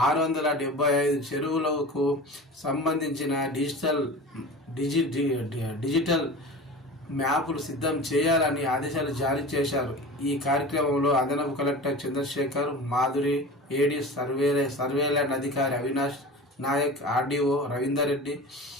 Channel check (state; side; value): normal; both; correlation 0.35